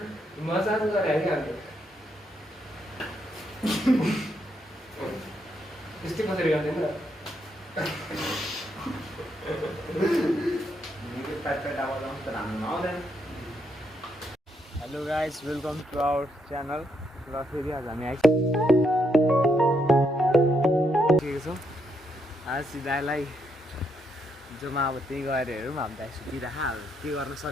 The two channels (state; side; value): normal; both; correlation 0.77